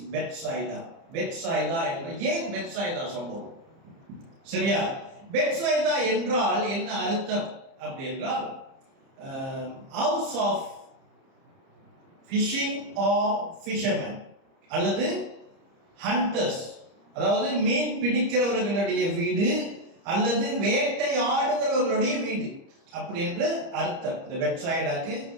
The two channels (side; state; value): left; late; 30 ms